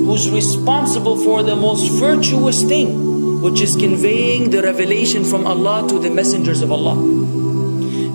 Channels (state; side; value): inverted; both; correlation -1.00